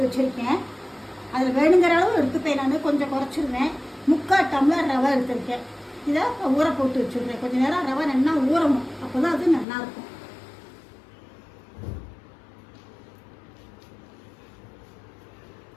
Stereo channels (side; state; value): right; drops out; at 9.7 s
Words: வச்சுருக்கேன். அதில் வேணுங்கிற அளவு எடுத்துப்பேன். நான் கொஞ்சம் குறைச்சிருவேன். 3/4 டம்ளர் ரவை எடுத்துருக்கேன். இதை ஊற போட்டு வச்சுருக்கேன். கொஞ்சம் நேரம் ரவை நல்லா ஊறணும், அப்போ தான் அது நல்லாயிருக்கும்.